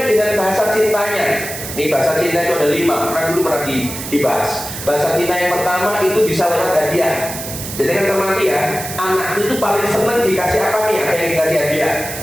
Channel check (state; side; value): noise; right; hiss, 8 dB below the sound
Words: dengan bahasa cintanya. Ini bahasa cinta itu ada 5, pernah dibahas. Bahasa cinta yang pertama itu bisa lewat hadiah. Jadi kan cermati ya, anak itu paling senang dikasih apa nih? Ada yang dikasih hadiah.